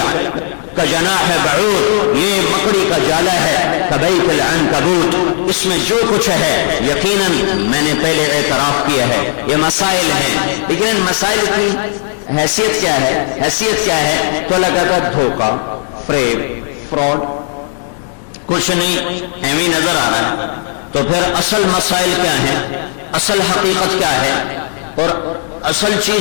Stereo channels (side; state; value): right; silent; digital silence